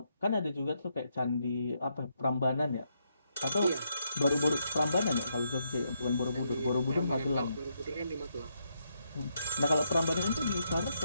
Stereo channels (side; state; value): both; inverted; correlation -0.78